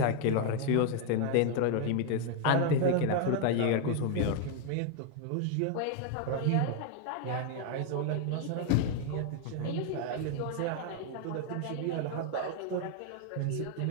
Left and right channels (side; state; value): both; different; correlation 0.00